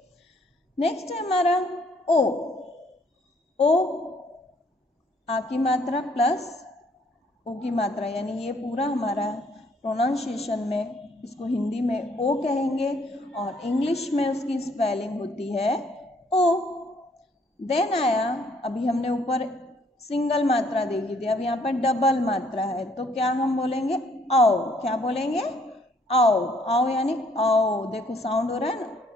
नेक्स्ट है हमारा ओ. ओ आ की मात्रा प्लस ओ की मात्रा, यानी ये पूरा हमारा प्रोनाउंसिएशन में इसको हिंदी में ओ कहेंगे और इंग्लिश में उसकी स्पेलिंग होती है ओ. देन आया, अभी हमने ऊपर सिंगल मात्रा देखी थी, अब यहाँ पर डबल मात्रा है तो क्या हम बोलेंगे? आओ. क्या बोलेंगे? आओ. आओ यानी आओ. देखो साउंड हो रहा है ना,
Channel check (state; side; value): normal; both; correlation 0.65